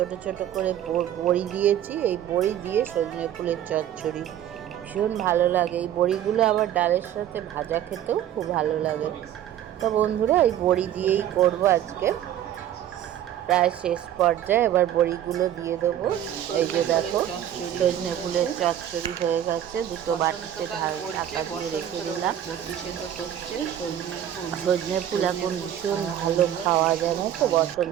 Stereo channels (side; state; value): left; quieter; 11.1 dB